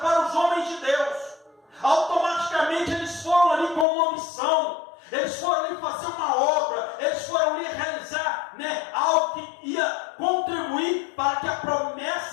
os homens de Deus. Automaticamente eles foram ali com uma missão. Eles foram ali fazer uma obra. Eles foram ali realizar algo que ia contribuir para que a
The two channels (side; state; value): right; drops out; at 3.9 s